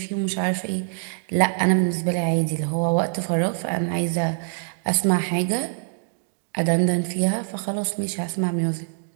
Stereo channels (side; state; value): left; silent; digital silence